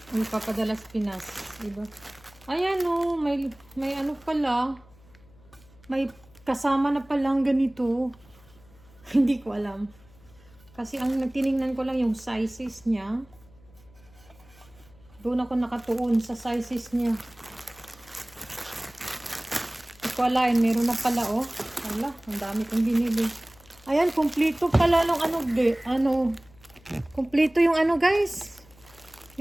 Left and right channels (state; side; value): noise; left; hum, 26 dB below the sound